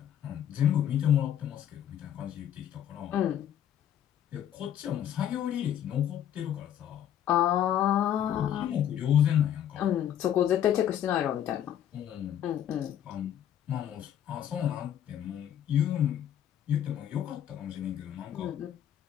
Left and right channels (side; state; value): right; quieter; 10.3 dB